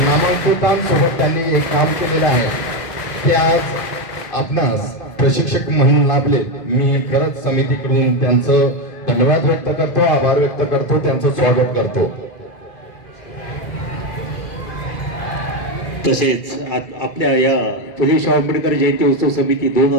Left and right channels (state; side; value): late; right; 2.5 ms